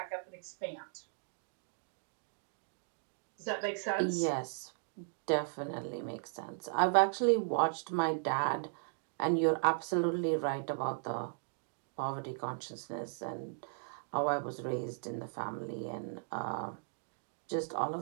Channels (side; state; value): left; silent; digital silence